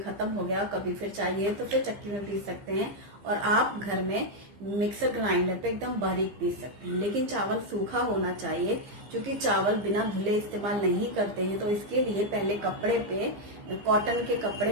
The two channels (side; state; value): left; late; 15 ms